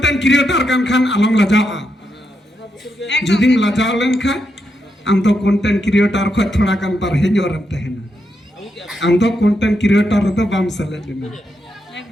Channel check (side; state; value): both; normal; correlation 0.82